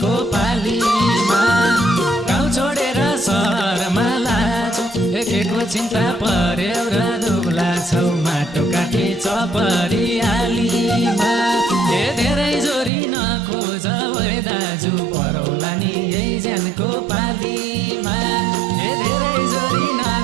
पालीमा गाउँ छोडेर सहरमा लाछौ के को चिन्ता पर्यो र दुला छौ माटो काटी छ परियालीमा ए धेरै जोरी नखोज ओइ दाजु परौला नि एकजनको पालीमा ए धेरै जोरी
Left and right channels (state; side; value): drops out; left; at 12.9 s